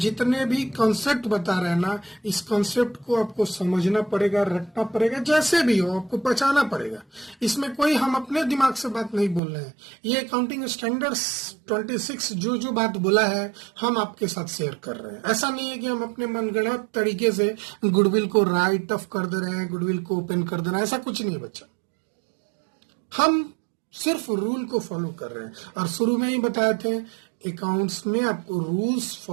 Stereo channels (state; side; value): drops out; left; at 9.4 s